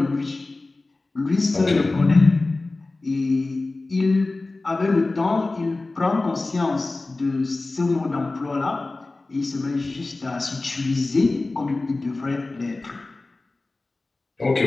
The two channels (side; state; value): right; quieter; 3.2 dB